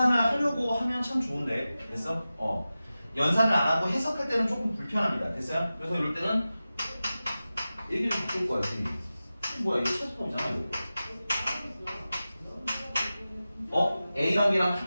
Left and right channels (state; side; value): inverted; both; correlation -0.95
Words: 하려고 하면 참 좋은데 됐어? 연산을 안 하고 해석할 때는 조금 불편합니다. 됐어요? 그래서 이럴 때는 얘기를 바꿀 거야. 뭐야 이거 최소값이잖아 이거. A랑 B랑